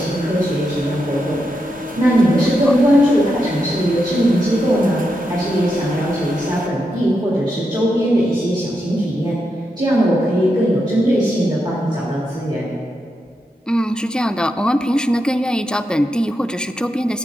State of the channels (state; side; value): normal; both; correlation 0.85